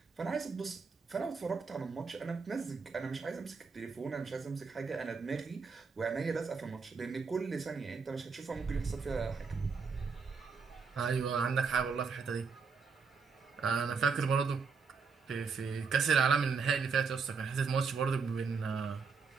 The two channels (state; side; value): quieter; left; 5.3 dB